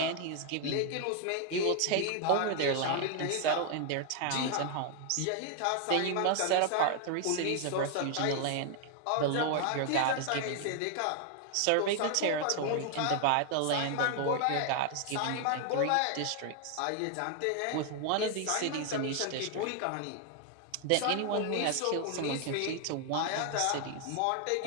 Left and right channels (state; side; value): different; both; correlation 0.00